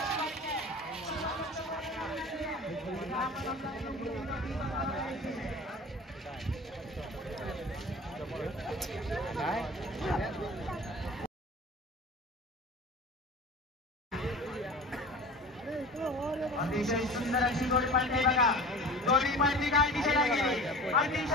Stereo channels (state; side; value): normal; both; correlation 0.39